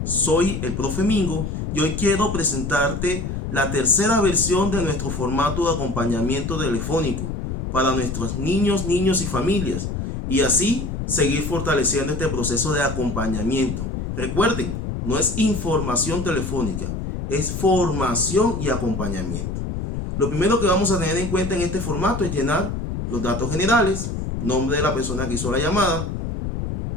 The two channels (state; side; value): noise; left; rumble, 4 dB below the sound